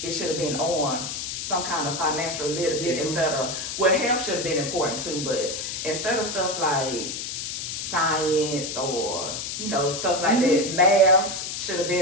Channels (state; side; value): noise; left; hiss, 5 dB below the sound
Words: it should have been on some kind of financial literacy instead of, well, health should have been important too, but instead of stuff like science or, stuff like that, math should have